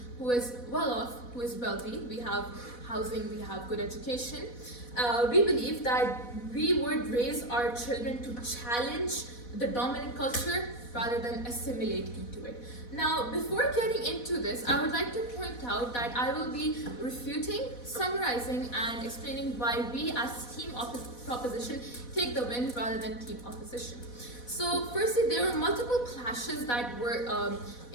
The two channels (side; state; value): right; late; 4.1 ms